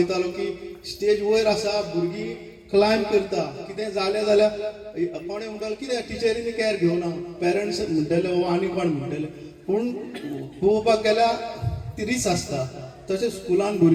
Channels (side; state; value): both; identical; correlation 1.00